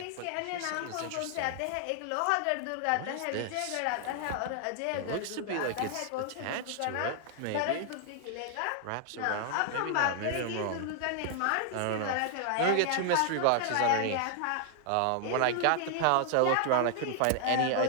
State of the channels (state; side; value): different; both; correlation 0.00